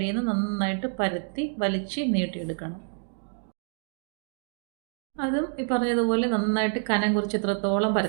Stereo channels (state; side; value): silent; left; 60 dB below the other